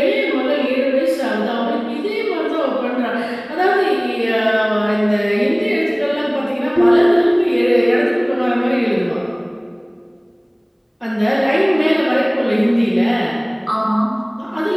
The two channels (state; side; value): identical; both; correlation 1.00